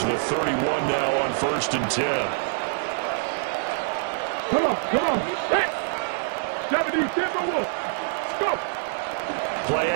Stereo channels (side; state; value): left; silent; digital silence